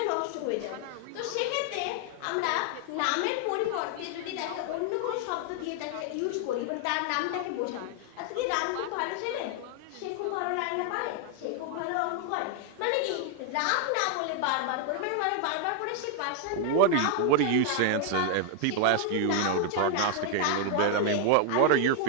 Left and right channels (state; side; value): different; both; correlation 0.00